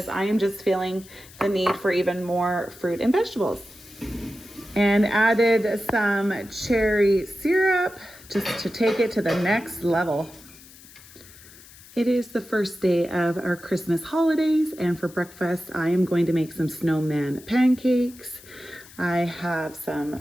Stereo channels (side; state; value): left; noise; hiss, 21 dB below the sound